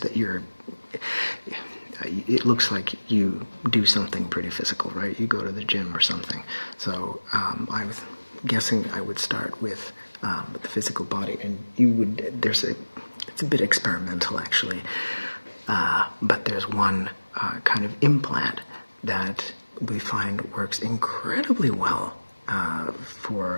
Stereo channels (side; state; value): both; inverted; correlation -1.00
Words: that it looks like you do something pretty physical, right? You go to the gym or something. So I was guessing I would start with the physical body, and it's a bit experimental actually, but there's one kind of implant that we find works incredibly well